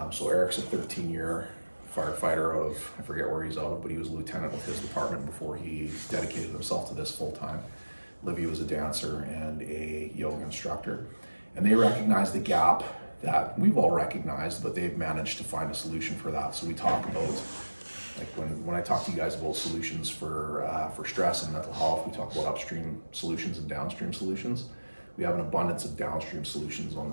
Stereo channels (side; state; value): both; inverted; correlation -1.00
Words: So Eric's a 13-year firefighter out of, I forget where he's out of, but he was a lieutenant with his department before he dedicated himself to this full time. Olivia was a dancer and a yoga instructor. And they recognized the gap that we've all recognized, but they've managed to find a solution for that. So we talk about, like when I talk to you guys about solutions for stress and mental health, we talk about upstream solutions and downstream solutions. We have an abundance of downstream solutions on